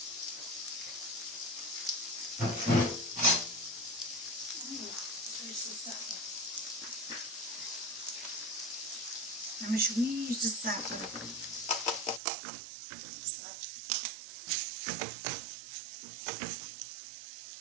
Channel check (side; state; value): left; drops out; at 12.2 s